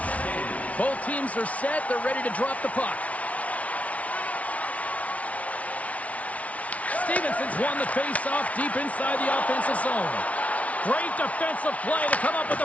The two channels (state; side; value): late; right; 0.067 ms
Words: Both teams are set. They're ready to drop the puck. Stevenson's won the face-off deep inside the offensive zone. Great defensive play to come up with